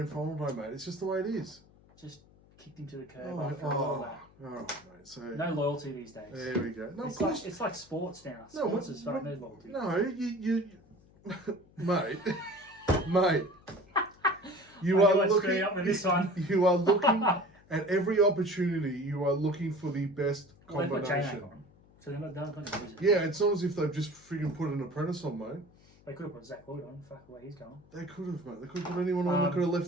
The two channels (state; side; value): noise; left; hum, 27 dB below the sound